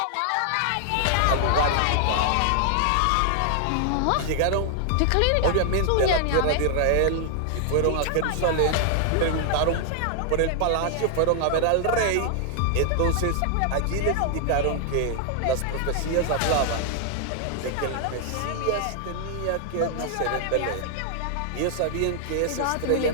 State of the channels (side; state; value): both; different; correlation -0.01